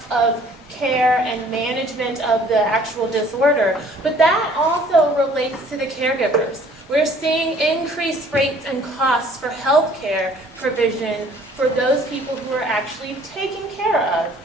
of care and management of the actual disorder, but that also relates to the caregivers. We're seeing increased rates and costs for health care provision for those people who are actually taking care of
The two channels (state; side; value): normal; both; correlation 0.55